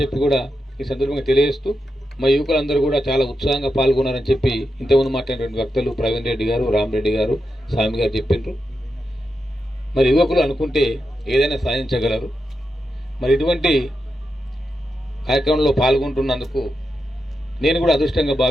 చెప్పి కూడా ఈ సందర్భంగా తెలియజేస్తూ మా యువకులందరూ కూడా చాలా ఉత్సాహంగా పాల్గొన్నారని చెప్పి ఇంతకుముందు మాట్లాడినటువంటి వక్తలు ప్రవీణ్ రెడ్డి గారు, రామరెడ్డి గారు, స్వామి గారు చెప్పిండ్రు. మరి యువకులు అనుకుంటే ఏదైనా సాధించగలరు. మరి ఇటువంటి కార్యక్రమంలో పాల్గొంటున్నందుకు నేను కూడా అదృష్టంగా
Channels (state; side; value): normal; both; correlation 0.87